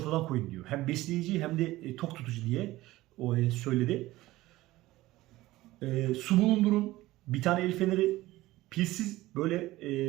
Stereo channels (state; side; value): quieter; left; 17.6 dB